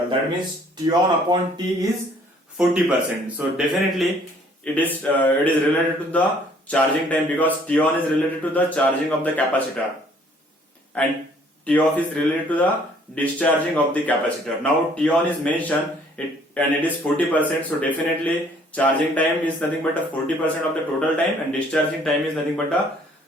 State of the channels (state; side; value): normal; both; correlation 0.60